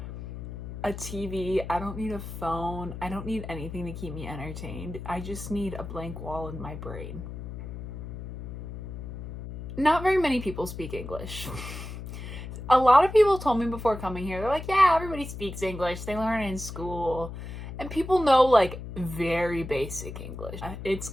a TV. I don't need a phone. I don't need anything to keep me entertained. I just need a blank wall in my brain. Not very many people speak English. A lot of people told me before coming here, they're like, yeah, everybody speaks English. They learn it in school. And people know like very basic English. It's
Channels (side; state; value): left; noise; hum, 9 dB below the sound